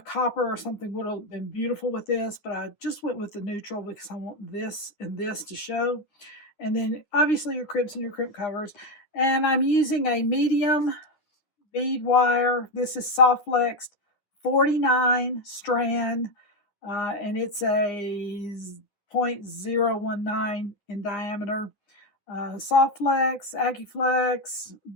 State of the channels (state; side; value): late; right; 9.8 ms